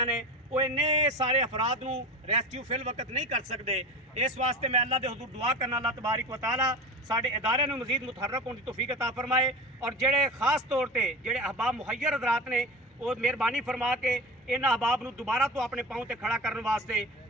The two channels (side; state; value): both; normal; correlation 0.31